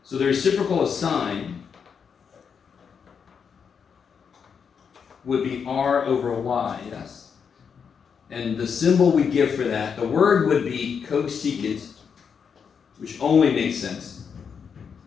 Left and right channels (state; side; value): quieter; right; 6.6 dB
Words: So the reciprocal of sine would be r over y, yes? And the symbol we give for that, the word would be cosecant, which only makes sense.